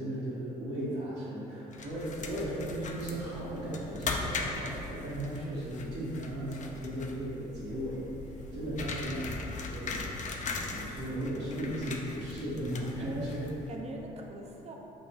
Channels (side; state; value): both; normal; correlation 0.46